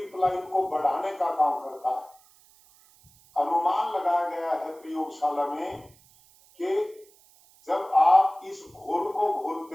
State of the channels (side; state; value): right; noise; hiss, 28 dB below the sound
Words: को बढ़ाने का काम करता है। अनुमान लगाया गया है प्रयोगशाला में कि जब आप इस घोल को